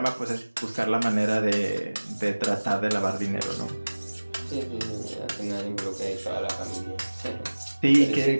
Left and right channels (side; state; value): both; inverted; correlation -1.00